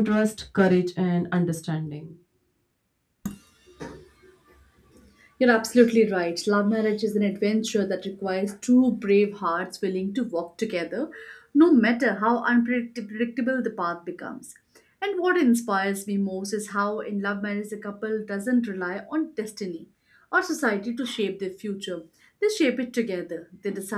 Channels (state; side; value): identical; both; correlation 1.00